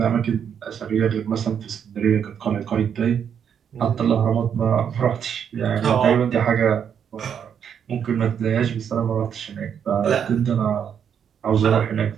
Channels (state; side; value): quieter; left; 8.0 dB